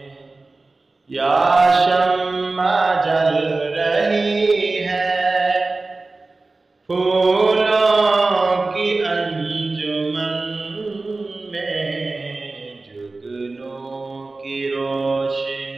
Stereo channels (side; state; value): left; quieter; 3.4 dB